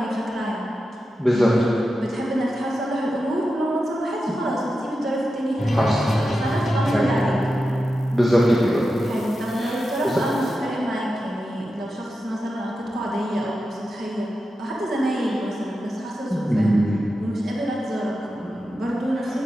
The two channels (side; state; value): both; normal; correlation 0.90